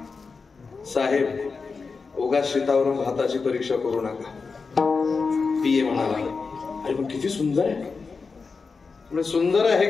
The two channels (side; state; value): right; quieter; 4.7 dB